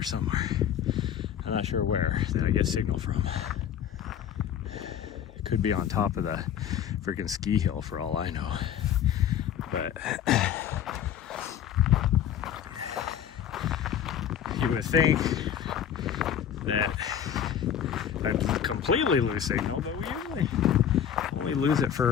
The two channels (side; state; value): right; quieter; 9.3 dB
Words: somewhere. I'm not sure where that I get signal from. It could be on top of the freaking ski hill for all I know. But you would think that I'd completely lose signal, but we usually only lose it